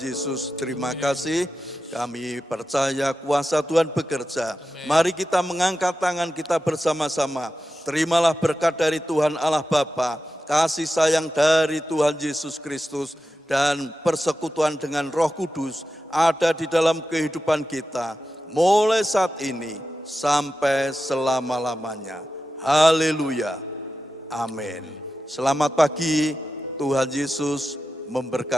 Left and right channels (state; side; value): normal; both; correlation 0.92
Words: terima kasih. Kami percaya kuasa Tuhan bekerja. Mari kita mengangkat tangan kita bersama-sama. Terimalah berkat dari Tuhan Allah Bapa, kasih sayang dari Tuhan Yesus Kristus, dan persekutuan dengan Roh Kudus ada di dalam kehidupan kita, mulai saat ini sampai selama-lamanya. Haleluya. Amin. Selamat pagi, Tuhan Yesus